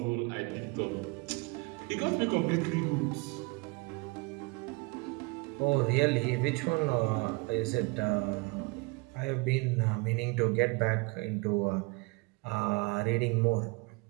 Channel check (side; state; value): left; quieter; 27.7 dB